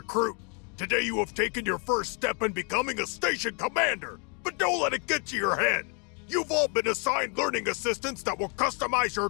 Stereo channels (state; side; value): quieter; right; 36.8 dB